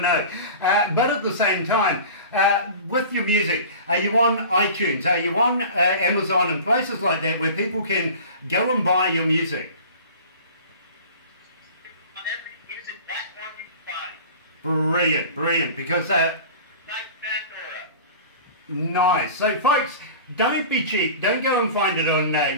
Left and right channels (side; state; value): both; inverted; correlation -0.39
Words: know. But at the same time, with your music, are you on iTunes? Are you on Amazon and places like that where people can go and buy your music? On every music platform you can Brilliant, brilliant, because nice. So folks, don't be cheap. Don't go and find it on